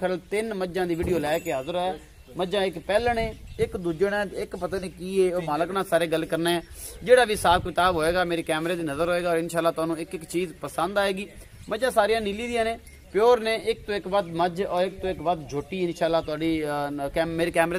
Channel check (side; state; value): both; identical; correlation 1.00